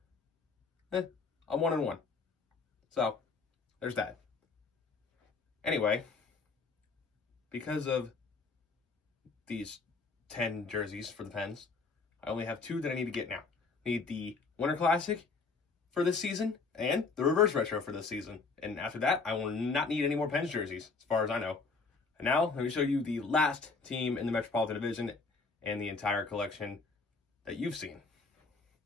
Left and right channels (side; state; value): right; quieter; 4.3 dB